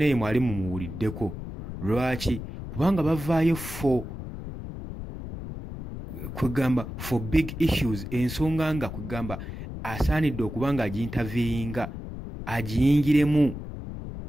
ye mwali mumuwuliddeko. Lwaki? Kubanga bavaayo for big issues, ensonga nga kwegamba asaanidde okubanga aginterviewinga agiyingiremu.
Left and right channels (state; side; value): noise; left; rumble, 9 dB below the sound